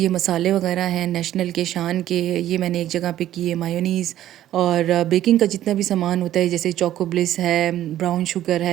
मसाले वगैरह हैं नेशनल के, शान के, ये मैंने एक जगह पे किए। मायोनीज़ और बेकिंग का जितना भी सामान होता है, जैसे चोको ब्लिस है, ब्राउन शुगर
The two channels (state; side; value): quieter; left; 12.7 dB